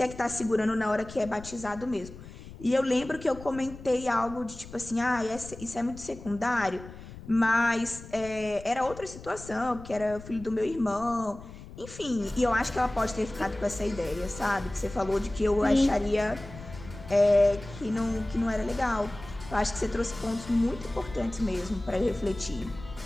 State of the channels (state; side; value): noise; left; rumble, 15 dB below the sound